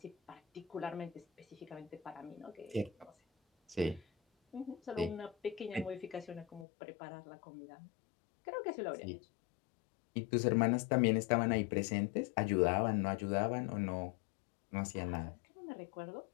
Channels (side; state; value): right; drops out; at 6.7 s